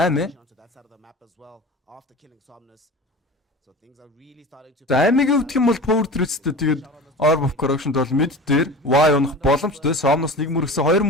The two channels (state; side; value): normal; both; correlation 0.34